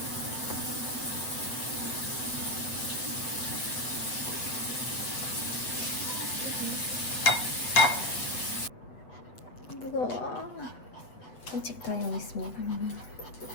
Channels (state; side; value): late; right; 8.0 ms